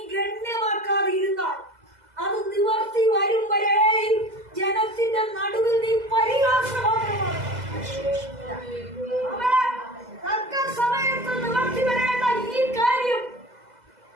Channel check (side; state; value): left; late; 2.0 ms